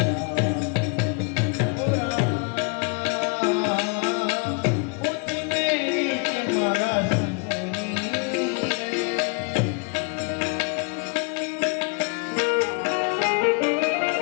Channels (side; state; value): right; quieter; 32.6 dB